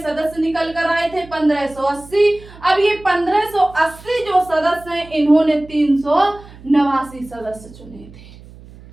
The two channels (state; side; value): noise; right; hum, 20 dB below the sound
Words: सदस्य निकल कर आए थे? 1580। अब ये 1580 जो सदस्य हैं, इन्होंने 389 सदस्य चुने थे।